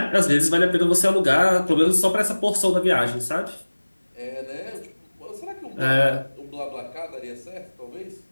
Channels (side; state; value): both; inverted; correlation -1.00